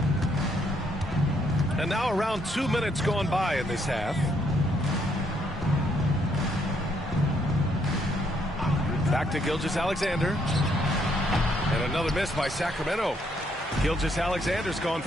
And now around 2 minutes gone by in this half. Back to Gilgeous-Alexander. And another miss by Sacramento. Gilgeous-Alexander's gone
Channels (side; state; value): both; normal; correlation 0.72